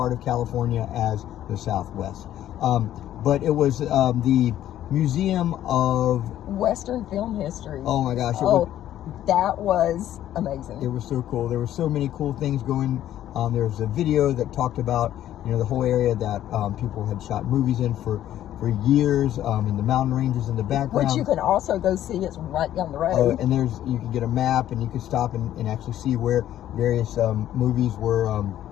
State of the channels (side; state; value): right; quieter; 12.2 dB